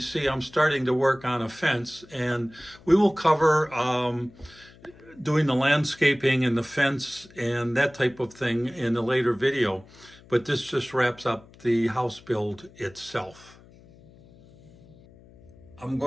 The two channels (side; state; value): left; noise; hum, 24 dB below the sound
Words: see, I'm starting to work on a fence, and we will cover doing the landscaping and the fence and that type of thing in a later video. But this just wraps up the house build itself. I'm